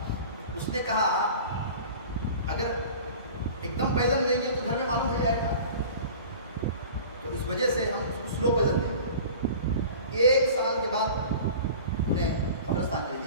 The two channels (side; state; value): both; inverted; correlation -0.40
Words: उसने कहा अगर एकदम पैदल लेंगे तो घर में मालूम हो जाएगा, तो इस वजह से हम उसको स्लो पैदल देंगे। 1 साल के बाद उन्हें قبرستان چلی